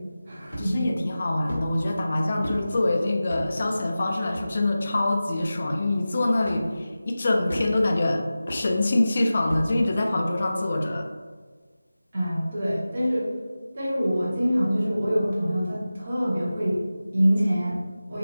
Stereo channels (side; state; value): both; inverted; correlation -0.96